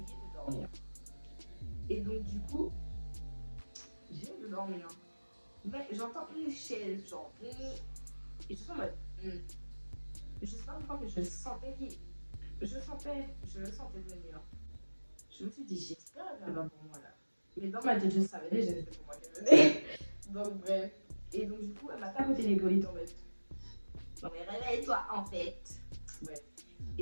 de dormir. Et donc, du coup, j'ai de dormir. Mais j'entends une chaise, genre, et je suis en mode, je sais pas pourquoi, mais je sentais je le sentais venir. Je me suis dit, j'espère qu'elle va pour moi là. Mais dans ma tête, je savais déjà que c'était pour moi qu'elle venait. Donc, bref. Et donc, du coup, elle m'a tapoté l'épaule et tombée. Non, mais réveille-toi en fait. Bref.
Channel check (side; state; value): both; inverted; correlation -1.00